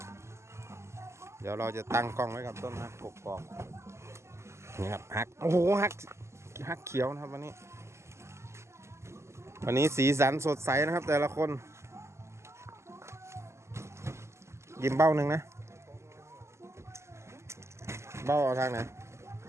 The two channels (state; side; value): late; left; 0.13 ms